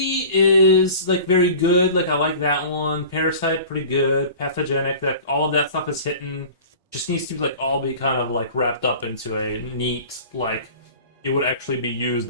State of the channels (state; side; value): inverted; both; correlation -0.40